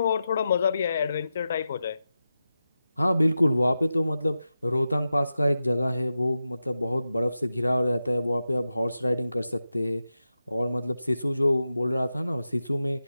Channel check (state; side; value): inverted; both; correlation -0.91